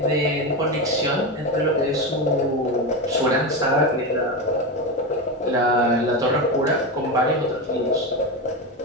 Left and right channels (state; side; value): normal; both; correlation 0.16